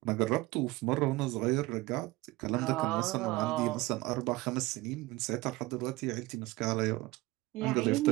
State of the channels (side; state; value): left; quieter; 20.4 dB